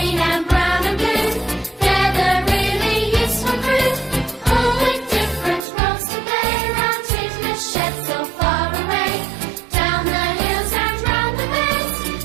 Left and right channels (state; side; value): drops out; left; at 5.7 s